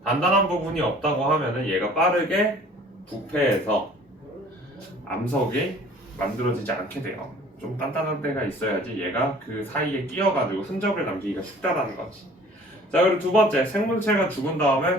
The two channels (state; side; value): normal; both; correlation 0.50